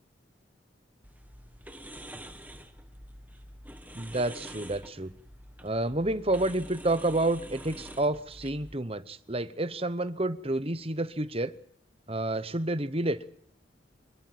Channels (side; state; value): both; normal; correlation 0.45